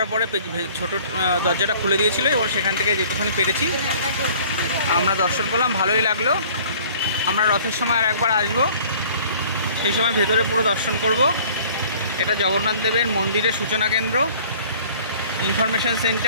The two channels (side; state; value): both; inverted; correlation -0.51